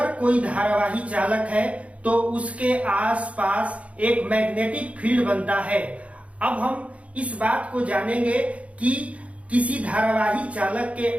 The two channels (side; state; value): left; late; 0.064 ms